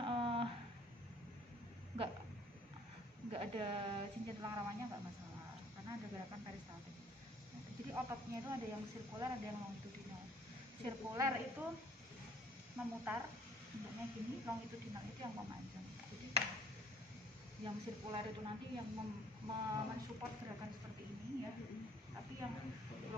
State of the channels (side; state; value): both; normal; correlation 0.57